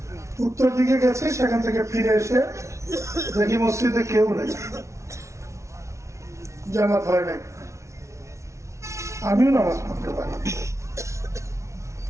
উত্তর দিকে গেছি, সেখান থেকে ফিরে এসে দেখি মসজিদে কেউ নেই, জামাত হয় নাই, আমিও নামাজ পড়তে পারি।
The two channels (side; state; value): left; late; 0.14 ms